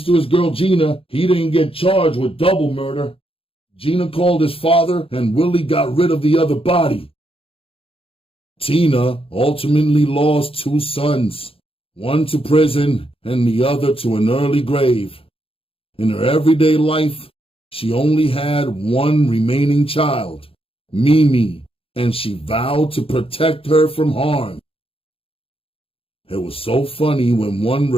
to his girl Gina, he didn't get charged with double murder. Gina called his father and Willie got rid of the other body. Tina ultimately lost two sons, one to prison and the other to an early grave. In her everyday life, she only had one remaining child, Mimi, and she vowed to protect her from harm. It was so funny when one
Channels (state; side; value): late; right; 0.27 ms